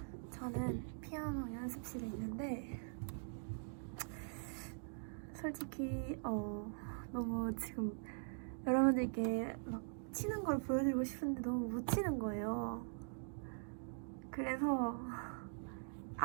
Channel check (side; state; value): left; silent; digital silence